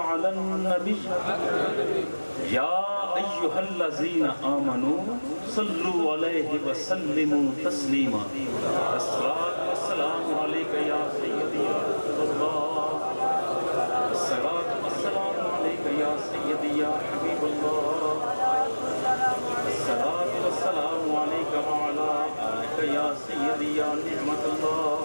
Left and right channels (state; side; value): inverted; both; correlation -1.00